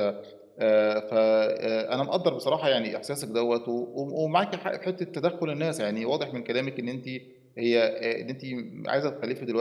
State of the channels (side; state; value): both; identical; correlation 1.00